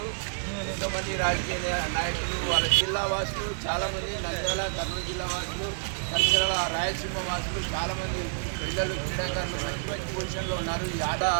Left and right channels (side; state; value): left; silent; 59 dB below the other